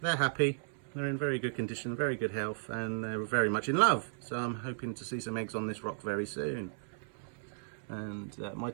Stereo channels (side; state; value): left; silent; 55 dB below the other